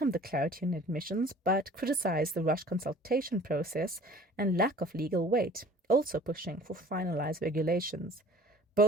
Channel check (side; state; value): both; normal; correlation 0.48